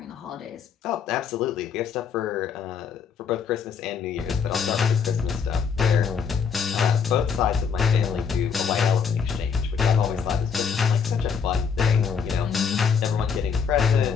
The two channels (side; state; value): right; quieter; 6.4 dB